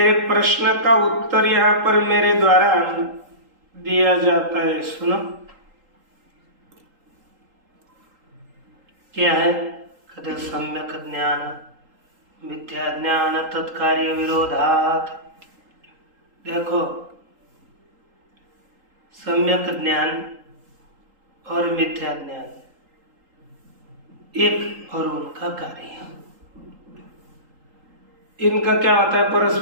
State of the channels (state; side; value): late; left; 3.8 ms